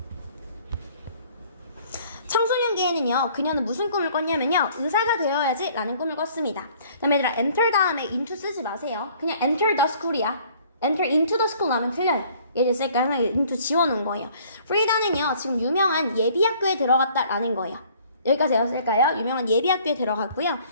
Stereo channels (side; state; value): both; inverted; correlation -0.57